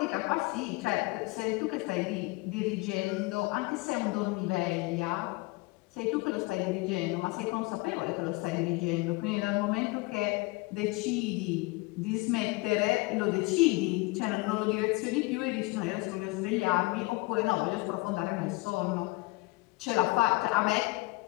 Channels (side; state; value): right; quieter; 23.8 dB